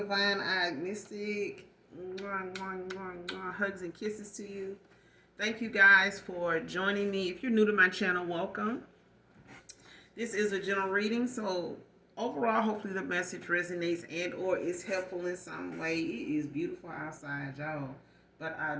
Eyed Mystic. Hugs and kisses to you. Thank you guys for joining me. If you're new to my channel, welcome. This is a general reading, so overall, hopefully the message resonates and or is helpful in some way. It is beautiful outside, y'all. But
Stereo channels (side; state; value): both; identical; correlation 1.00